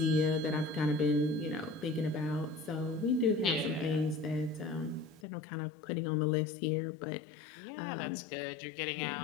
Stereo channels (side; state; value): right; drops out; at 5.2 s